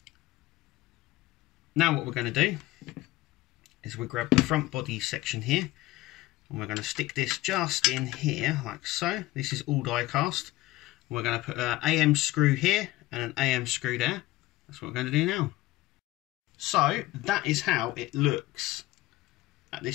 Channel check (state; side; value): quieter; right; 17.6 dB